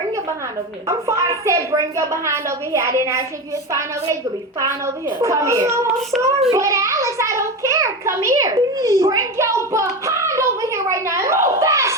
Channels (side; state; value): both; normal; correlation 0.21